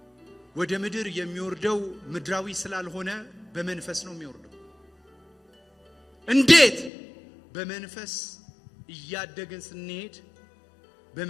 ወደ ምድር የሚወርደው ምድራዊ ስላልሆነ በመንፈስ ነው የሚወርደው። እንዴት? በመንፈስ እያደግን ስንሄድ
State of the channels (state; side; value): drops out; right; at 6.9 s